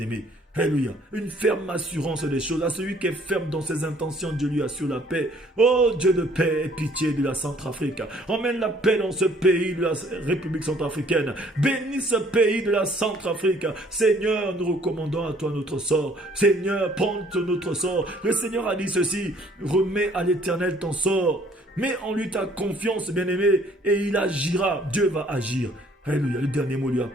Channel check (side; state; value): both; normal; correlation 0.60